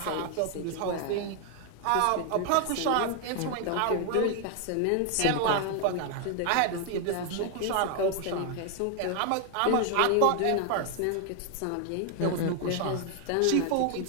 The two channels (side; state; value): both; different; correlation 0.00